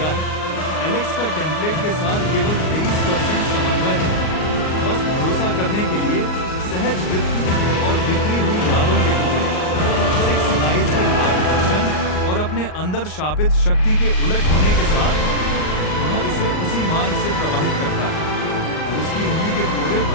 है, एलेक्स का टेम्पलेट के साथ केवल 23% समन्वय है। बस भरोसा करने के लिए सहज वृत्ति और बिखरी हुई यादों के टुकड़े, 6 आइज के मार्गदर्शन और अपने अंदर शापित शक्ति के उलट होने के साथ वह इसे उसी मार्ग से प्रवाहित करता है। उसकी उंगली के फोड़े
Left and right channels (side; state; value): right; late; 38 ms